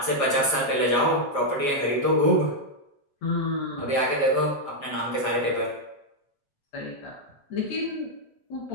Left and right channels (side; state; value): right; late; 7.3 ms